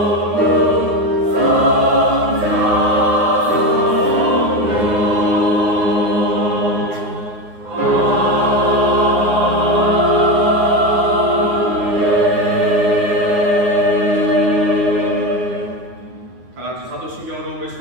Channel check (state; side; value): late; left; 9.5 ms